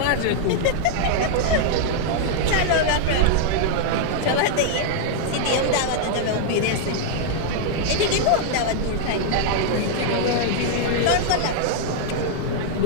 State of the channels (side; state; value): both; different; correlation -0.01